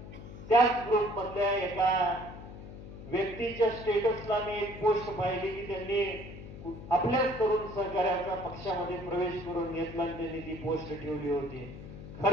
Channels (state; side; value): noise; left; hum, 13 dB below the sound